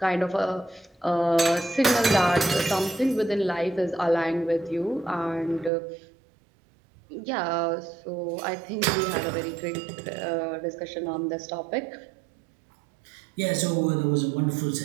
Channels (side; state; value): left; drops out; at 5.7 s